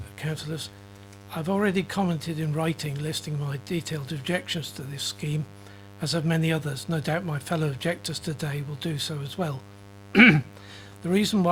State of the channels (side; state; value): both; identical; correlation 1.00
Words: councillors. I've already commented in writing listing my detailed objections to this scheme, as have many others. No doubt my fellow objectors today will do so as well. The reason